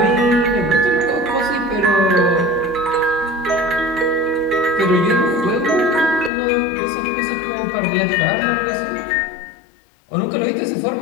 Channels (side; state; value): right; drops out; at 6.3 s